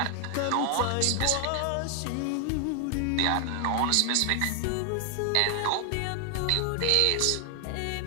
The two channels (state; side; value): different; both; correlation 0.00